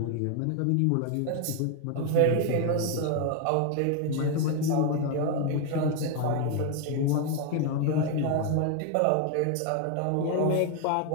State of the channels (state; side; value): different; both; correlation 0.01